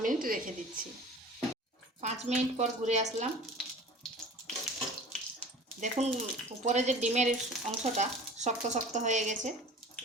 মিনিট রেখে দিচ্ছি। 5 মিনিট পর ঘুরে আসলাম। দেখুন উপরে যে ডিমের অংশটা শক্ত শক্ত হয়ে গেছে।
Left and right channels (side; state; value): both; normal; correlation 0.41